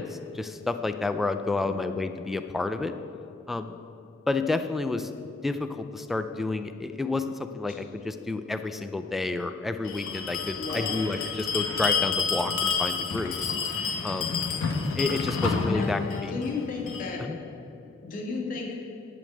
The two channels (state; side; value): quieter; right; 3.6 dB